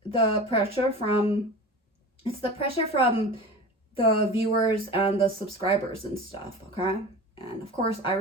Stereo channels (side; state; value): both; normal; correlation 0.33